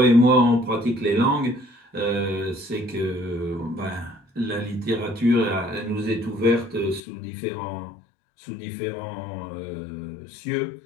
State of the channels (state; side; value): drops out; right; at 7.0 s